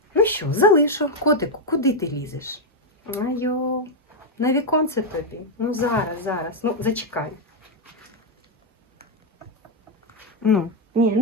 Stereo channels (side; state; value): both; normal; correlation 0.01